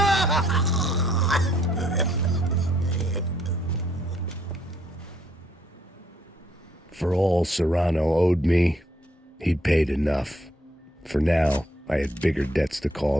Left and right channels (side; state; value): both; normal; correlation 0.68